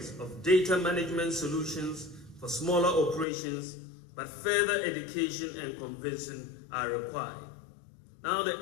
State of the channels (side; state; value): right; drops out; at 3.2 s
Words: of data management solutions for smaller operations, but further education and convincing are required. Now, the